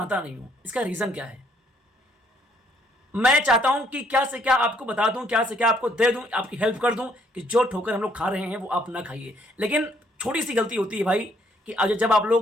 नहीं हूं। इसका रीजन क्या है? मैं चाहता हूं कि क्या से क्या आपको बता दूं, क्या से क्या आपको दे दूं, आपकी हेल्प कर दूं कि जो ठोकर हम लोग खा रहे हैं वो आप ना खाइए। लेकिन छोटी सी गलती होती है भाई कि आज जब आप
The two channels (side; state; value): both; normal; correlation 0.67